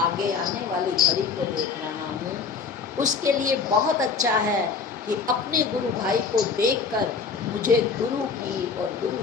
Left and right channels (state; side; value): quieter; right; 5.3 dB